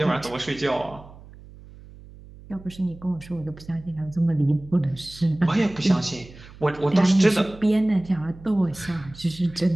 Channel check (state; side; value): noise; right; hum, 19 dB below the sound